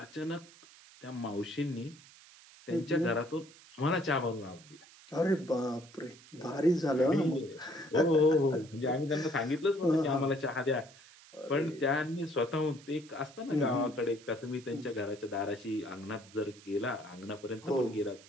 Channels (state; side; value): noise; right; hiss, 22 dB below the sound